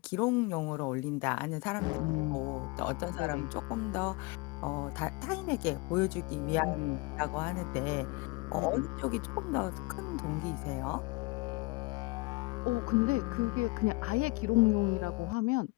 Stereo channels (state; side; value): quieter; right; 25.2 dB